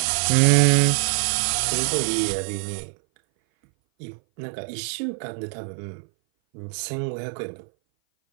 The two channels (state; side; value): silent; left; 59 dB below the other